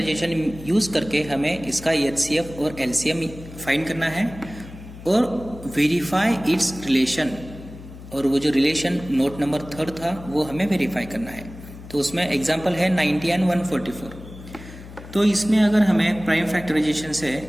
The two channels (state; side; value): noise; left; hum, 15 dB below the sound